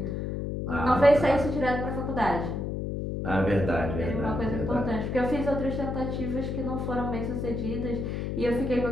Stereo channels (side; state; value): left; noise; hum, 3 dB below the sound